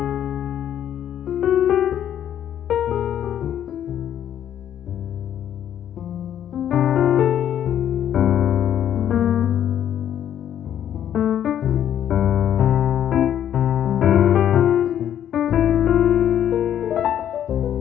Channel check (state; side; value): quieter; right; 10.3 dB